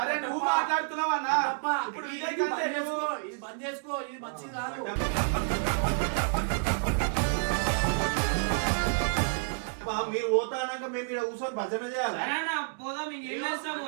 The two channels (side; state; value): left; silent; digital silence